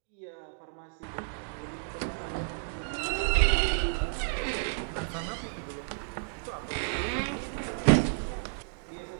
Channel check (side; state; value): left; silent; digital silence